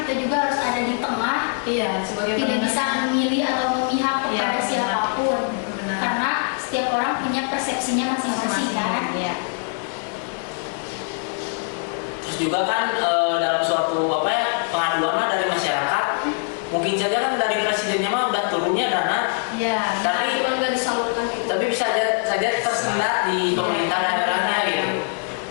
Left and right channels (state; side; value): silent; right; 56 dB below the other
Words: kita juga harus ada di tengah, Iya, sebagai tidak penengah. bisa memilih atau memihak kepada Iya, benar. siapapun. Benar. Karena setiap orang punya persepsinya masing-masing kan. Iya. Terus juga kan dalam suatu pengaduan lah dari masyarakat, mungkin saja kan dari presidennya mah udah turunnya dana, Iya. tapi Cuman nggak disalurkan gitu. tapi bisa saja tersendat di pemerintah daerahnya gitu.